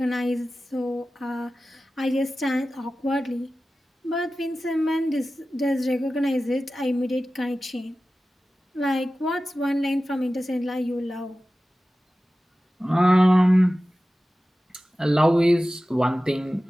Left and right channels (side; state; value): both; normal; correlation 0.95